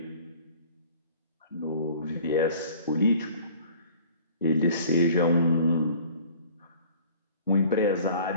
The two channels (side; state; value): both; inverted; correlation -0.49